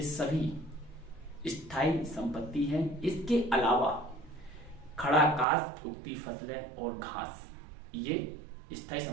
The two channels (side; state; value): left; drops out; at 5.5 s